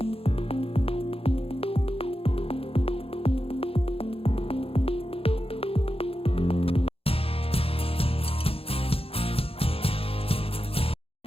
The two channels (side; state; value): right; late; 0.28 ms